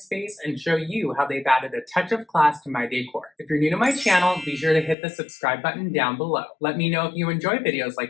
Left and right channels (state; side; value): drops out; right; at 5.0 s